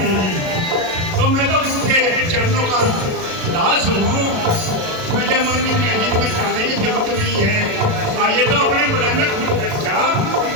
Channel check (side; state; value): left; late; 37 ms